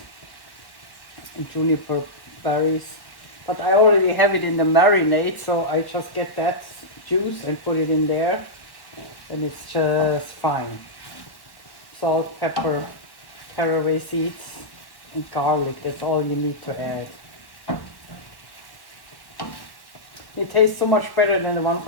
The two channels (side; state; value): right; late; 1.1 ms